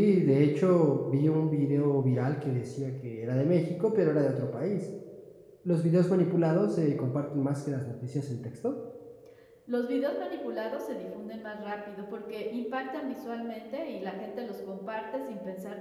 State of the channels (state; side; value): identical; both; correlation 1.00